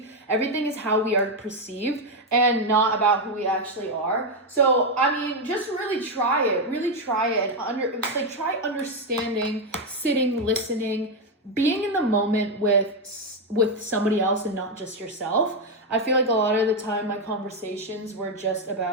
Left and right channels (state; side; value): normal; both; correlation 0.05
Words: Everything is how we are perceived and not about who we actually are. So, I mean, just really try it. Really try it. And try understanding, sitting, listening, being in the moment with somebody else and not just yourself. I feel like a lot of the time my conversations were just